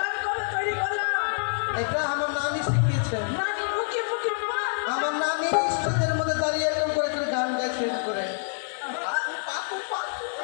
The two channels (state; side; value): silent; right; 60 dB below the other